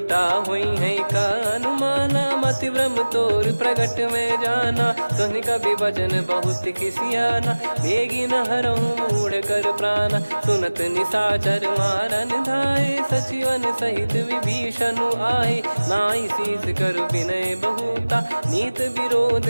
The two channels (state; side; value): inverted; both; correlation -1.00